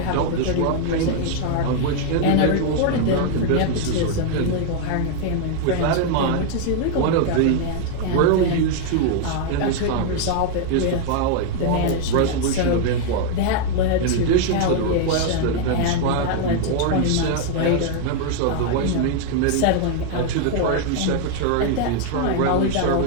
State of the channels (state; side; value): different; both; correlation 0.00